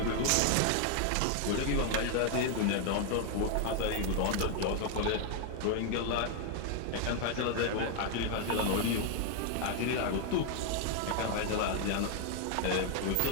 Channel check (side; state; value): both; different; correlation 0.00